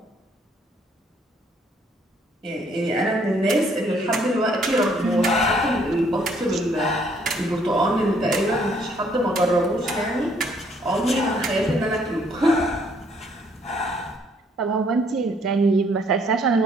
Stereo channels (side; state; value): both; normal; correlation 0.65